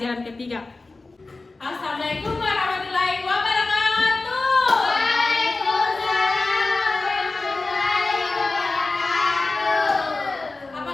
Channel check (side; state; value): right; quieter; 3.5 dB